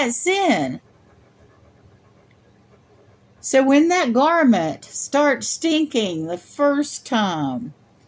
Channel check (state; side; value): identical; both; correlation 1.00